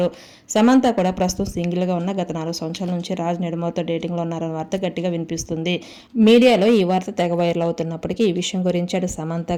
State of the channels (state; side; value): identical; both; correlation 1.00